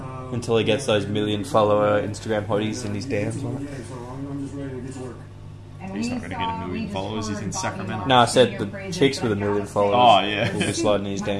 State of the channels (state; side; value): identical; both; correlation 1.00